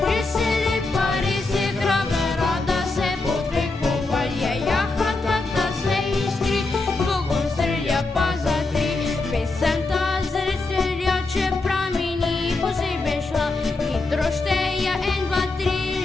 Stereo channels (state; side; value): quieter; right; 3.4 dB